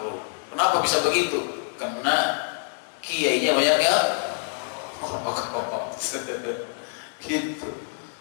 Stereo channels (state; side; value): silent; right; 61 dB below the other